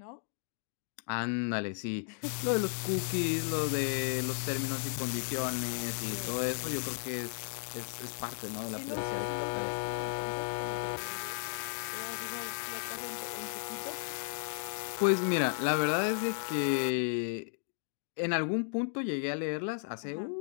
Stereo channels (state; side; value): silent; right; digital silence